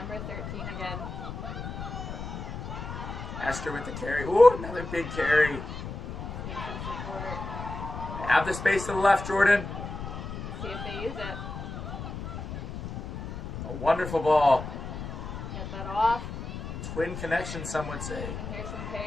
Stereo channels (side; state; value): left; noise; rumble, 7 dB below the sound